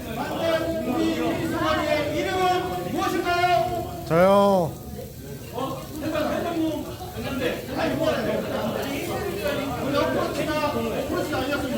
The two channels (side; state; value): both; identical; correlation 1.00